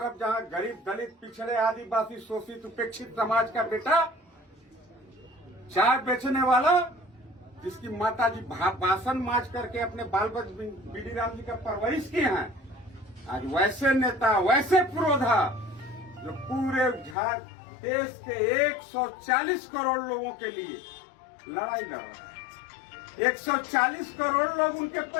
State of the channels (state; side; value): drops out; right; at 17.2 s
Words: जहां गरीब दलित पिछड़े आदिवासी शोषित उपेक्षित समाज का बेटा चाय बेचने वाला जिसकी माता जी बासन माज करके अपने बाल बच्चे बीडी राम जी का परवरिश किए हैं, आज वैसे नेता वैसे पुरोधा जो पूरे देश के 140 करोड़ लोगों के लिए लड़ाई लड़ रहा है। 140 करोड़ लोग उनके